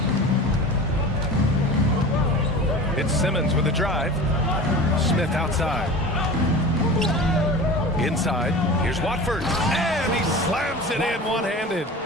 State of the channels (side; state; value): both; normal; correlation 0.35